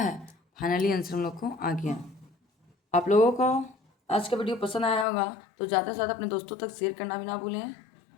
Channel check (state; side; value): drops out; right; at 5.1 s